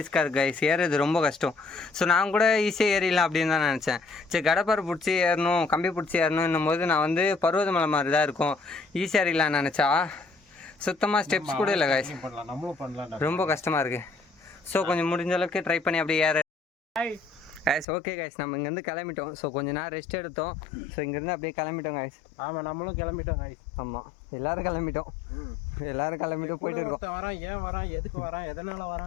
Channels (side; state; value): right; drops out; at 17.9 s